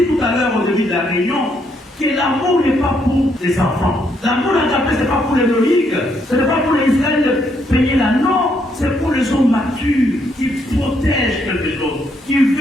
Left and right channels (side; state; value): both; normal; correlation 0.74